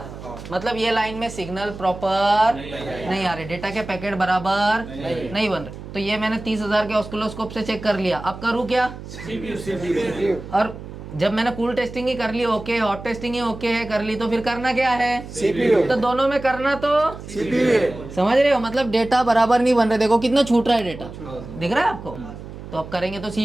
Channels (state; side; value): noise; right; hum, 13 dB below the sound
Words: मतलब ये लाइन में सिग्नल प्रॉपर नहीं आ रहे, डेटा के पैकेट बराबर नहीं बन रहे। तो ये मैंने 30,000 के ऑस्किलोस्कोप से चेक कर लिया। अब करूँ क्या? और जब मैंने कूल टेस्टिंग ही कर ली ओके, हॉट टेस्टिंग ही ओके है कर ली, तो फिर करना क्या है? तो दोनों में करना तो समझ रहे हो, मतलब डेटा बराबर नहीं बन रहे। देखो कितना छूट रहा है डेटा, दिख रहा है आपको? तो अब करेंगे तो